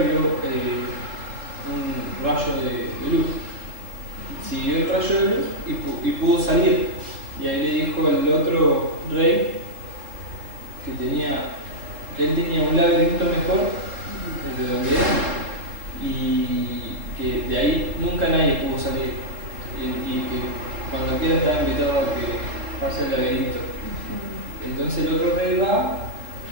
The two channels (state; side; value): late; left; 3.8 ms